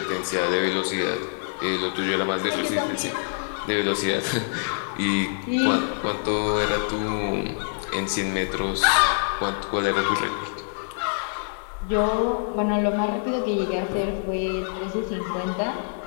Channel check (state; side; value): silent; right; digital silence